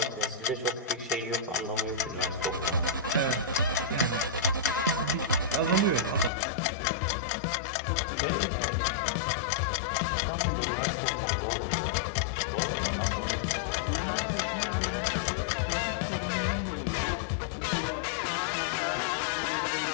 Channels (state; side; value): drops out; right; at 6.3 s